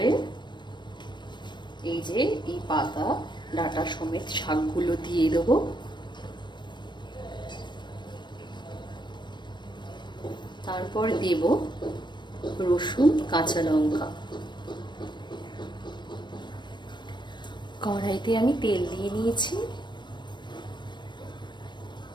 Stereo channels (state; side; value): late; right; 0.22 ms